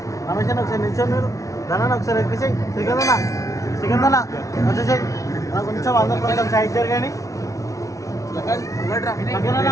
రమేష్ ఒకసారి నిల్చొని మీరు ధనాన్ని ఒకసారి ఎక్కించి శ్రీకందన వచ్చేసాయి కొంచెం అందరు కొంచెం సైడ్ జరగండి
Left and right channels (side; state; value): right; late; 0.16 ms